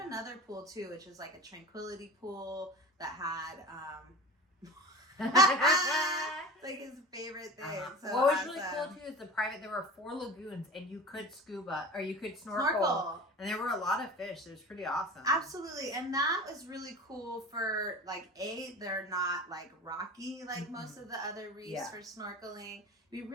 another pool too, which was like a tranquility pool that had like his favorite thing. So what was really cool too is there were 4 lagoons and you could scuba or you could snorkel. And there were a lot of fish. It was pretty awesome. Absolutely. And that was really cool for like they're not like rocky like most of the other reefs for snorkeling. Be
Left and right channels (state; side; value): normal; both; correlation 0.35